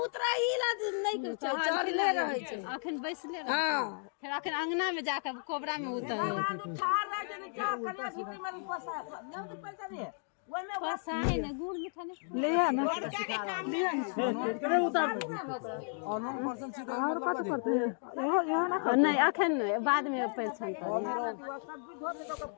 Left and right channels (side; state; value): right; silent; 55 dB below the other